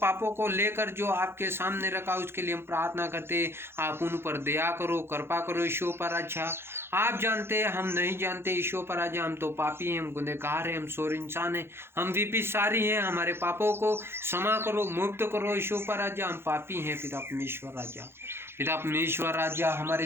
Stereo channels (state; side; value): late; left; 0.12 ms